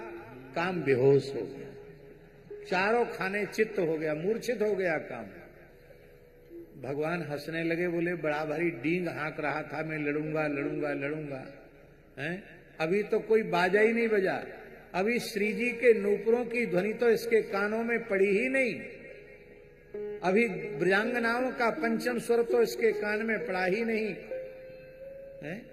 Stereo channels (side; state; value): both; identical; correlation 1.00